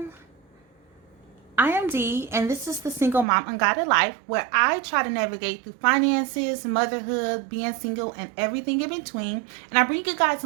I am Dee, and this is the Single Mom Unguided Life, where I try to navigate through finances, motherhood, being single, and everything in between. And I bring you guys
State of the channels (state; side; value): drops out; left; at 3.2 s